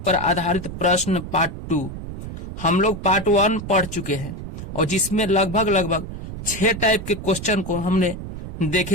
पर आधारित प्रश्न पार्ट 2। हम लोग पार्ट 1 पढ़ चुके हैं और जिसमें लगभग 6 टाइप के क्वेश्चन को हमने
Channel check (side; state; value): right; noise; rumble, 9 dB below the sound